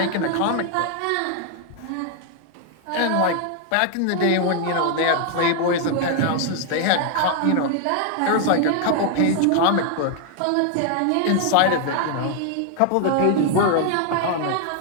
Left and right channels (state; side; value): different; both; correlation 0.00